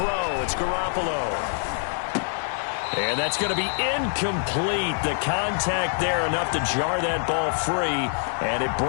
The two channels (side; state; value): right; silent; digital silence